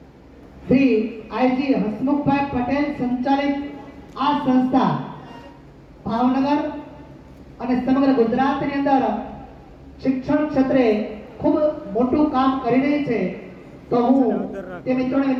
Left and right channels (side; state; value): both; identical; correlation 1.00